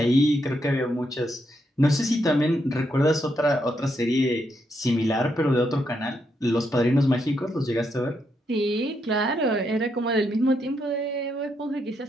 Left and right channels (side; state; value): both; normal; correlation 0.79